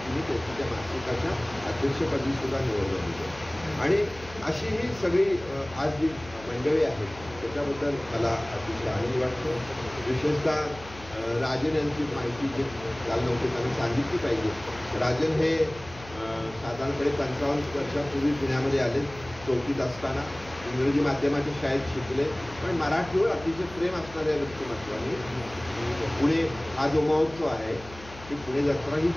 त्यांची त्या मासिकाच्या अध्यक्षपदी सुद्धा निवड झाली आहे. आणि अशी ही सगळी आज जी मंडळी आहेत त्याच्याबद्दल मला अतिशय आनंद वाटतो. विशेषतः राजन यांची माहिती जे काल नव्हते त्यांना सांगितली पाहिजे. राजन हे साधारणपणे 55 वर्षापूर्वी पुण्यामध्ये आले. 4थीत असताना इंग्रजी माध्यमाच्या शाळेत शिकले, पण मराठीवर अतिशय प्रेम असणाऱ्या व्यक्तिमत्वाने पुणे हा जो महोत्सव आहे ती पुणे जत्रा ही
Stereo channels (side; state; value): left; noise; hum, 18 dB below the sound